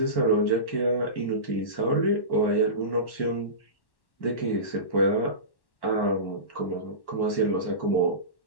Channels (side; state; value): right; late; 1.1 ms